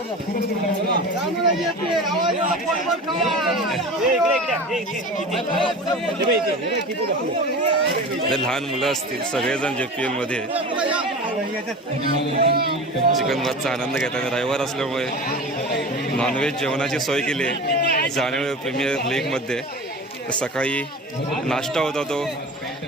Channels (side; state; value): both; normal; correlation 0.33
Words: लहान मुलं असतील सगळेजण JPL मध्ये चिकन भातचा आनंद घेतात. रविवार असल्यामुळे नॉनव्हेज जेवणाची सोय केली आहे जाणवे प्रीमियर लीगमध्ये. सकाळी नाश्ता होता, तो